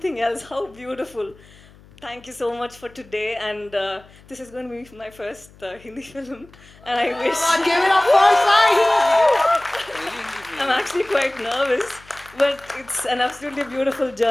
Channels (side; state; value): left; noise; hum, 25 dB below the sound